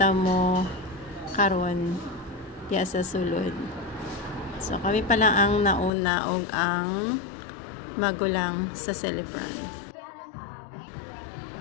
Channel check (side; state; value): right; drops out; at 5.9 s